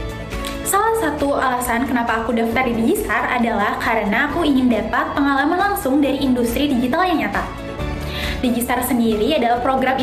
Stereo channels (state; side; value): identical; both; correlation 1.00